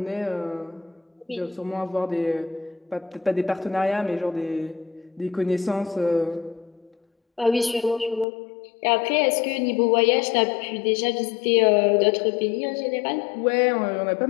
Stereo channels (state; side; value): drops out; right; at 8.2 s